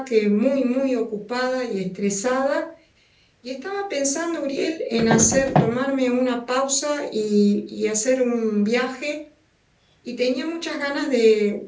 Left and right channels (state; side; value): identical; both; correlation 1.00